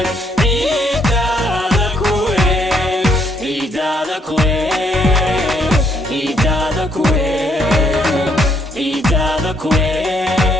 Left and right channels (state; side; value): normal; both; correlation 0.71